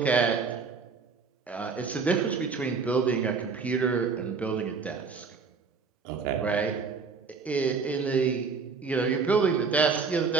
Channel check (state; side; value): quieter; left; 5.1 dB